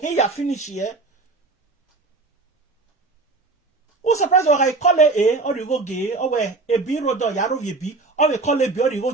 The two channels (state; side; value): quieter; left; 3.6 dB